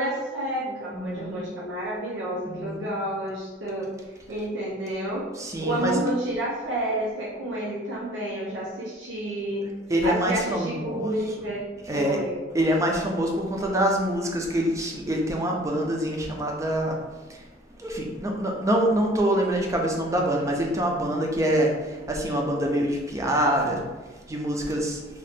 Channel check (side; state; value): both; normal; correlation 0.50